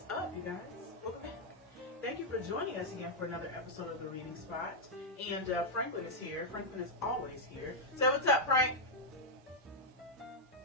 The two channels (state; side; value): normal; both; correlation -0.03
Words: up, you guys? Welcome back. Thank you for joining us again for another episode of The Reading Spot. And Franklin is here. Franklin is always here. So what's up, Frank?